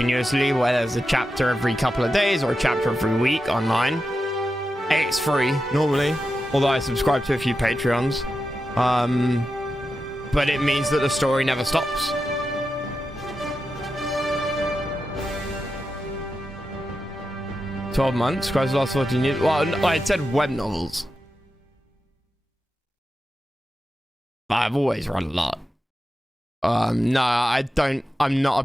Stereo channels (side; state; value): both; normal; correlation 0.90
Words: where there's a chapter every couple of days or a chapter every week online, it's free normally, although I subscribe to a few Patreons. But it means that the story never stops. $12 Christ last 14 years. Well, I said web novels. I've always read a lot. No, I don't. I'm not a